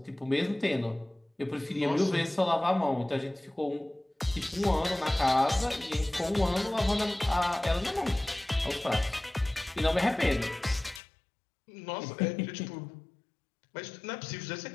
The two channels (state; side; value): drops out; right; at 11.0 s